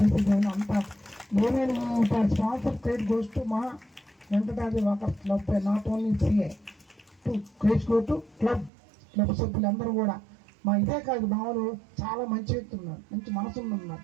చేసేదాన్ని అంత ఏమైనా స్పాన్సర్ క్రెడిట్ గోస్ టు మా Venkatadri walkers club, not only CA to credit go to club సభ్యులందరూ కూడా. మా ఇదే కాదు, మా వాళ్ళు చాలా మంచి వ్యక్తులు ఉన్నారు, మంచి మనసులు ఉన్నారు,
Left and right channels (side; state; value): left; drops out; at 8.7 s